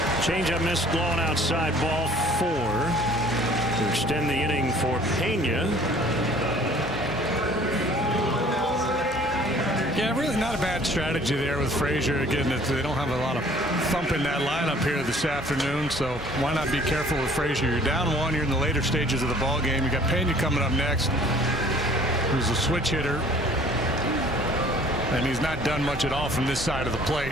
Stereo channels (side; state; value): both; normal; correlation 0.53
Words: Changeup missed, blown outside, ball 4 to extend the inning for Pena. Yeah, really not a bad strategy there with Frazier. Again, they don't have a lot of thump in that lineup here this afternoon, so why not be careful with Frazier? You're down 1, you're in the later stages of the ball game. You got Pena coming up next, who's a switch hitter, and he's not done much at all from this side of the plate.